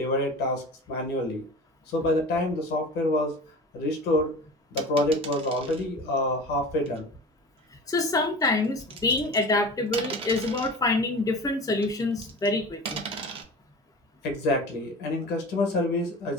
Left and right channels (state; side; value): normal; both; correlation 0.35